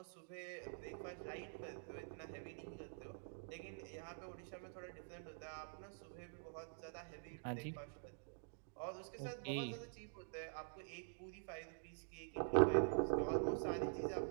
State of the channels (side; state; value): left; silent; digital silence